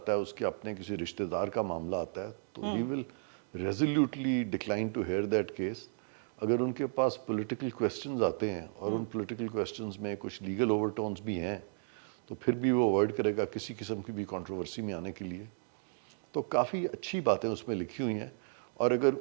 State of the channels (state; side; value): silent; left; digital silence